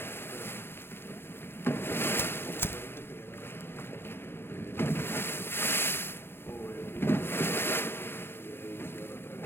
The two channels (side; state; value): right; late; 0.11 ms